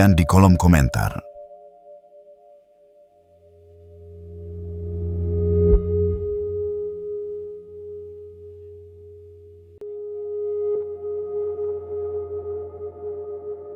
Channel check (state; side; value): identical; both; correlation 1.00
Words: di kolom komentar.